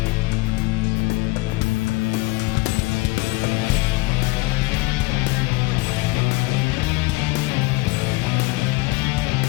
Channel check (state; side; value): quieter; right; 22.6 dB